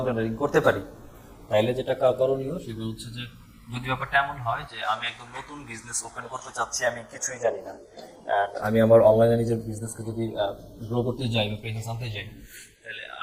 রাইটিং করতে পারি, তাইলে যেটা করণীয় সেগুলো হচ্ছে যে, যদি ব্যাপারটা এমন হয় যে আমি একদম নতুন বিজনেস ওপেন করতে চাচ্ছি, আমি কিছুই জানি না, আমি আমার অনলাইনে নিজের বিজনেসকে যদি গ্রো করতে যাই বা প্রেজেন্স আনতে যাই, তাহলে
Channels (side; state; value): both; identical; correlation 1.00